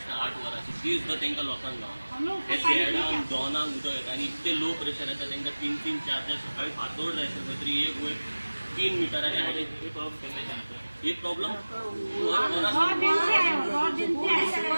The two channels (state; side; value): inverted; both; correlation -1.00